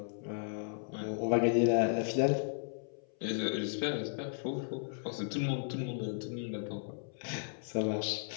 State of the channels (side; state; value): right; silent; 54 dB below the other